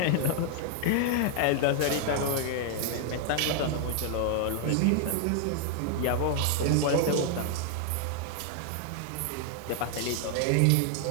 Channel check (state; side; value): different; both; correlation 0.00